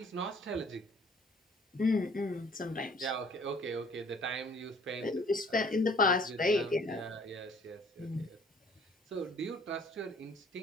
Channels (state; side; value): normal; both; correlation 0.56